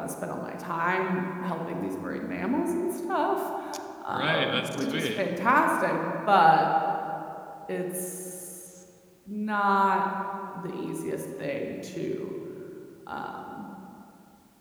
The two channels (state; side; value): identical; both; correlation 1.00